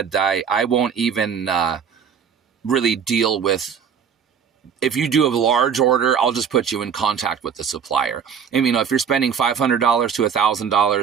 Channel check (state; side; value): quieter; left; 7.2 dB